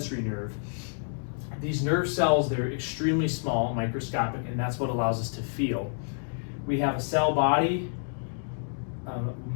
nerve, these nerve cells, they're extremely small, microscopic, and that's what allows us to feel. We have a cell body,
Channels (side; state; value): right; silent; digital silence